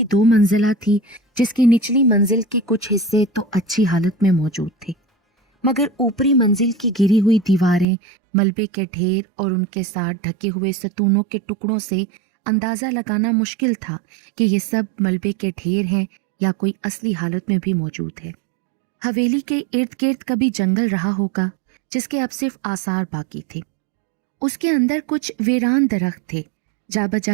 2 منزلہ تھی، جس کی نچلی منزل کے کچھ حصے تو اچھی حالت میں موجود تھے، مگر اوپری منزل کی گری ہوئی دیواریں، ملبے کے ڈھیر اور ان کے ساتھ ڈھکے ہوئے ستونوں کے ٹکڑوں سے اندازہ لگانا مشکل تھا کہ یہ سب ملبے کے ڈھیر ہیں یا کوئی اصلی حالت میں بھی موجود ہے۔ حویلی کے ارد گرد کبھی جنگل رہا ہوگا جس کے اب صرف آثار باقی تھے۔ اس کے اندر کچھ ویران درخت تھے، جا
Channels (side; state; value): left; drops out; at 7.9 s